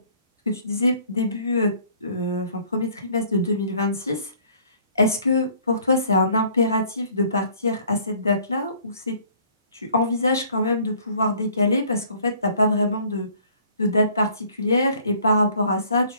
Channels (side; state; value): both; inverted; correlation -0.57